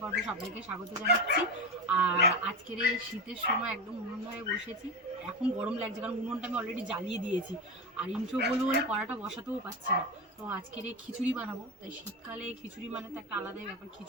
পর্বে সবাইকে স্বাগত জানাচ্ছি। আর আজকের এই শীতের সময় একদম উনুন ধরে বসেছি। এখন গরম লাগছে কারণ উনুনটা আমি অলরেডি জ্বালিয়ে দিয়েছি, আর ইন্ট্রো বলবো বলে কড়াটা বসাতেও পারছি না। তো আজকের এই খিচুড়ি বানাবো, তাই শীতকালে খিচুড়ি মানে তো একটা আলাদাই ব্যাপার।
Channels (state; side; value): normal; both; correlation 0.19